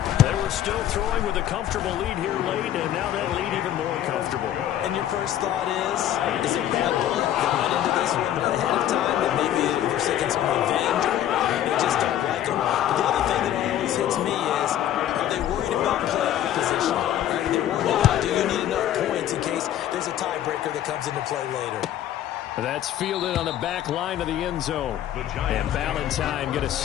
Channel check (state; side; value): quieter; right; 11.7 dB